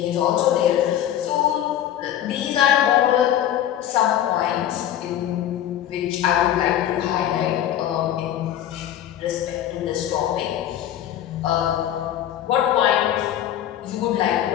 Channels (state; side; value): quieter; right; 11.2 dB